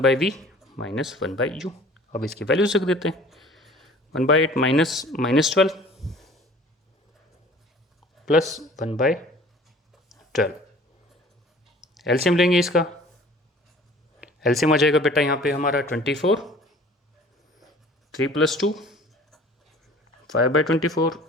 minus 1/u। अब इसकी वैल्यू रख देते हैं 1/8 -12 प्लस 1/12। एलसीएम लेंगे इसका, एलसीएम आ जाएगा बेटा यहाँ पे हमारा 24, 3 + 2 5/24।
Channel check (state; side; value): normal; both; correlation 0.49